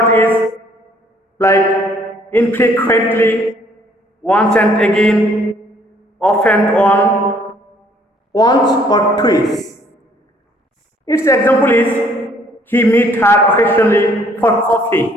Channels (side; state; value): both; normal; correlation 0.62